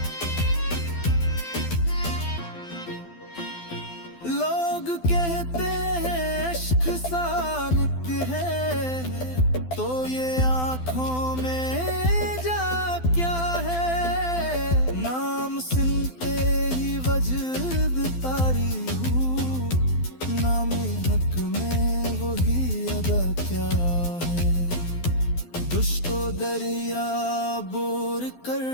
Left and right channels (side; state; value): right; late; 12 ms